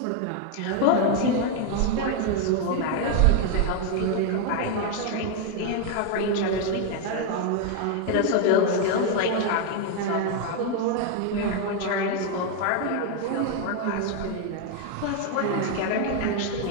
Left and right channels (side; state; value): both; different; correlation 0.01